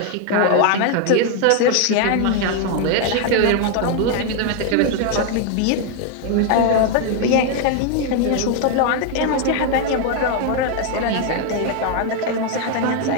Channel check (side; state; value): both; different; correlation 0.01